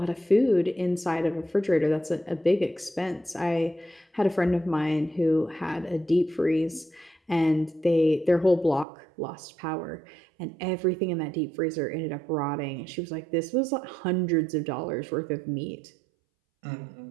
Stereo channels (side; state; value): left; drops out; at 8.8 s